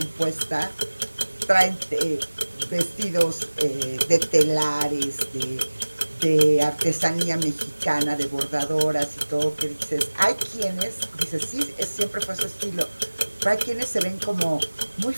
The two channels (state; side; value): inverted; both; correlation -1.00